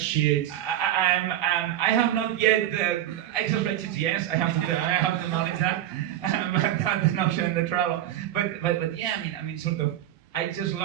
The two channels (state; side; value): quieter; left; 12.3 dB